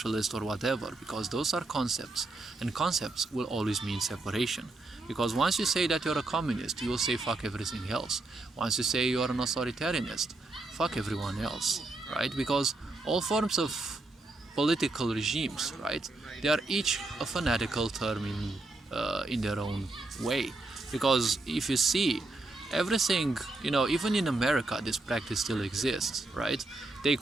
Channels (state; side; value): quieter; left; 3.1 dB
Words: or whatever, because those are concepts, and concepts will always mean separation. Because once you say that you're a communist, you will say fuck everything else. Once you say you're an authoritarianist, fuck everyone else, right? Because all forms of political regimes, right, they are each a fanatical term in their own way. Because if you see, everything, even in America, this practice still exists, right? They